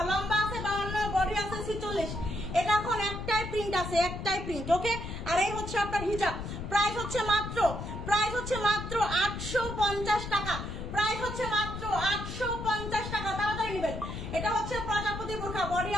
লম্বা আছে 52, বডি আছে 46। এটা এখন একটাই প্রিন্ট আছে, একটাই প্রিন্ট, ওকে? আর এই হচ্ছে আপনার হিজাব, প্রাইস হচ্ছে মাত্র 850 টাকা, প্রাইস হচ্ছে মাত্র 850 টাকা, তাড়াতাড়ি নেবেন। এটা হচ্ছে প্রজাপতি বোরখা, বডি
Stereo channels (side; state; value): left; noise; rumble, 7 dB below the sound